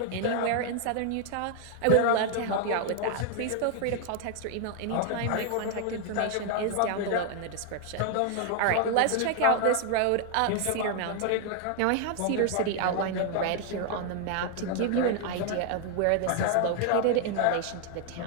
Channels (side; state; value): both; different; correlation 0.00